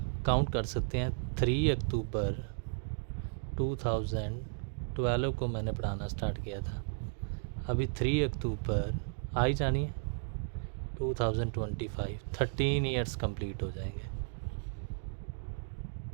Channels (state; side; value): silent; left; digital silence